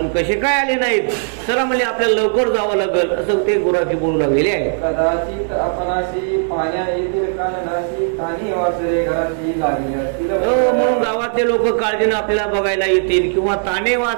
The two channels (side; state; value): left; silent; digital silence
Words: कसे काय आले नाहीत, चला म्हणजे आपल्याला लवकर जावं लागेल असं ते गुराखी बोलू लागलेले आहे. कदाचित आपणाशी पाण्या येतील कान नाशी कानी वाचले घराची लागली असतील. म्हणून गावातले लोक काळजीनं आपल्याला बघायला येतील, किंवा ताने